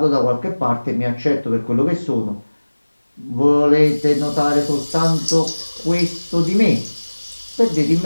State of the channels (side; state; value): both; inverted; correlation -1.00